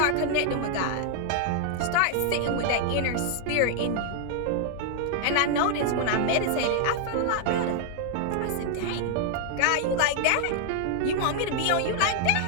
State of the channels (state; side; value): different; both; correlation 0.00